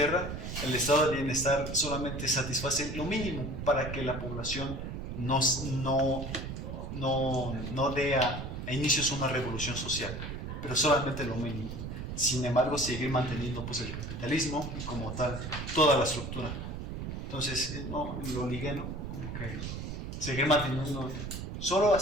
el estado de bienestar solamente satisface lo mínimo para que la población no dé a inicios una revolución social, pero solamente lo mínimo. Sin embargo, seguir manteniendo pues el capitalismo y como tal toda la estructura. Entonces, no, lo ligué, ¿no? Como que seguir manteniendo solo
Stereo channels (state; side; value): noise; right; rumble, 6 dB below the sound